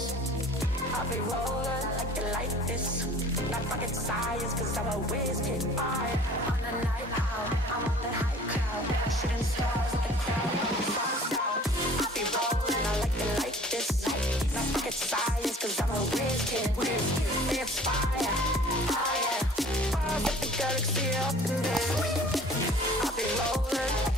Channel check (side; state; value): both; normal; correlation 0.49